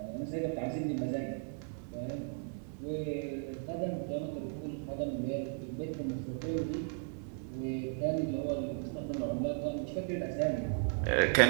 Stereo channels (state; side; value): silent; left; 54 dB below the other